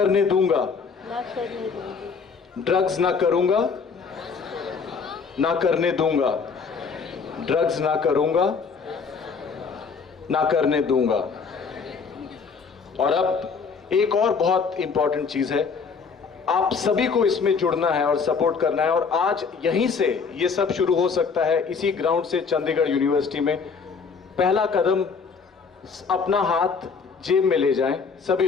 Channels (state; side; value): quieter; right; 5.4 dB